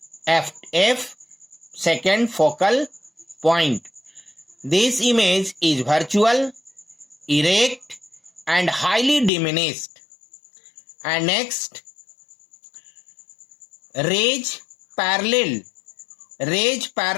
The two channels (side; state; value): right; drops out; at 9.3 s